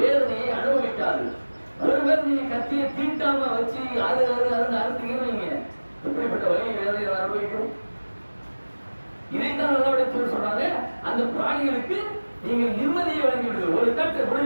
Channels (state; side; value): inverted; both; correlation -1.00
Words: அனுபவிக்காது. ஒருவர் நீங்க கத்தியை தீட்டாம வச்சு அறுத்தீங்கன்னு வைங்க, எப்படிப்பட்ட வழி வேதனையை அனுபவிக்கும். இதைத்தான் நல்லபடியாக சொல்றாங்க, அந்த பிராணிகளுக்கு நீங்கள் நிம்மதியை வழங்கிவிடுங்கள். ஒரு கட்டை